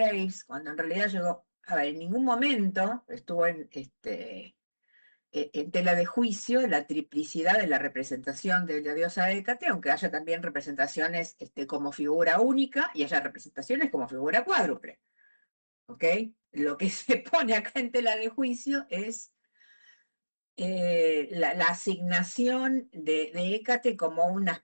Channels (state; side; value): inverted; both; correlation -1.00